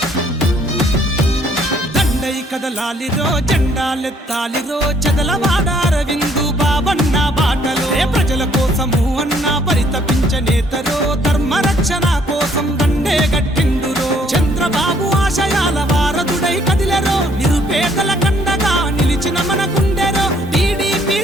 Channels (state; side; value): normal; both; correlation 0.65